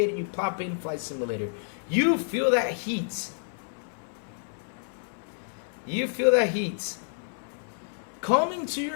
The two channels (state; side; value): silent; right; 57 dB below the other